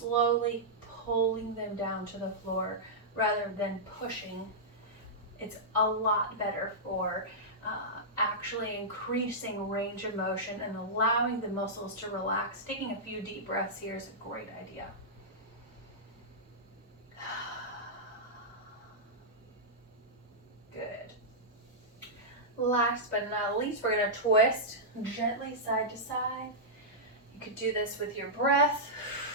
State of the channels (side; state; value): both; normal; correlation -0.12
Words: pulling them down to the floor rather than pushing, it's a lot better for actually increasing range of motion and allowing the muscles to relax. Taking a few deep breaths here is a great idea. Good. Last but not least, we're going to twist gently side to side. You could do this with your breath.